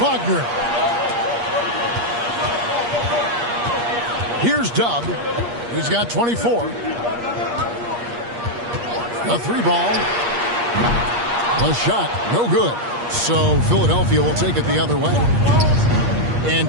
Here's Dub. He's got 24. A 3-ball. A shot. No good. So Philadelphia will take it the other way. And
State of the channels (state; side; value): late; left; 8.5 ms